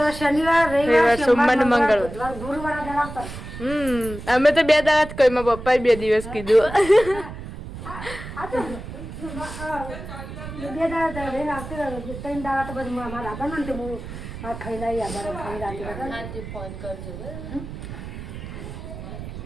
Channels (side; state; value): right; noise; rumble, 10 dB below the sound